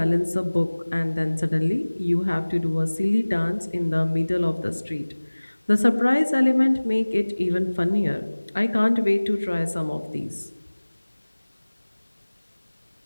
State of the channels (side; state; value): both; inverted; correlation -1.00